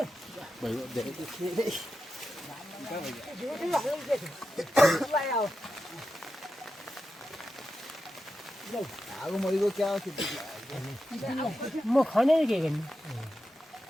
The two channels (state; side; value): normal; both; correlation 0.90